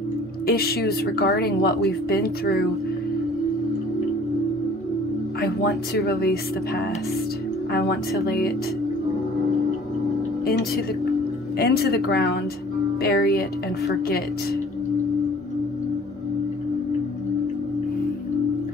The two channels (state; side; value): normal; both; correlation 0.51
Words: issues regarding what we've been through, I want to release the past. I want to lay it into the ground, bury it, and forget.